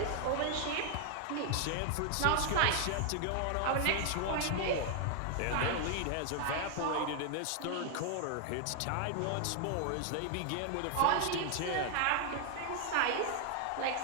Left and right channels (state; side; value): different; both; correlation 0.00